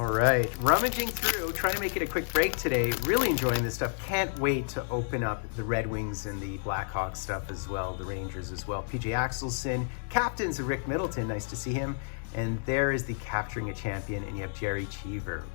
right, rummaging through, trying to make it a quick break today. Really enjoying this stuff. Can't wait to open up the Red Wings and the Blackhawks stuff as well, the Rangers as well. PJ Axelson, captains of Rick Middleton, nice to see him. And there is the Capturing a Champion, and you have Jerry Cheever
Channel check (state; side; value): silent; right; 58 dB below the other